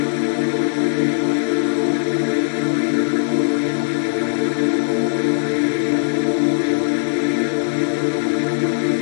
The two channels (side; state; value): right; silent; digital silence